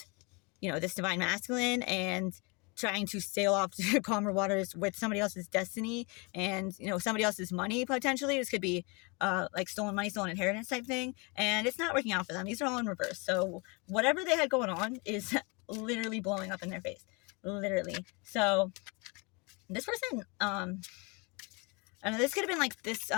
you know, this divine masculine and trying to sail off to calmer waters with somebody else's destiny and, you know, somebody else's money, potentially. This could be, like, stolen money, stolen inheritance type thing. And it's not working out for them. These are all in reverse. So, whatever they had going on is literally blowing up in their face. Literally. So, this person, I don't know, this could have been like this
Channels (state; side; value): quieter; right; 30.2 dB